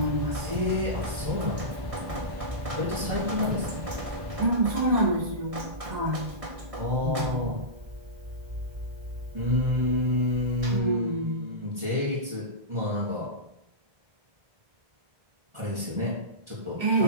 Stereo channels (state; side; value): late; left; 1.6 ms